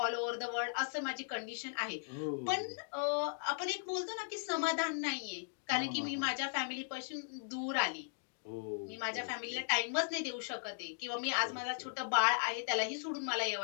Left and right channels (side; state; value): right; silent; digital silence